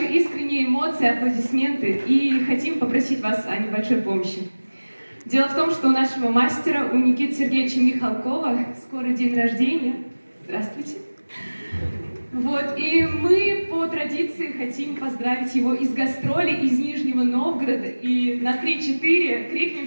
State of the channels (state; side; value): inverted; both; correlation -1.00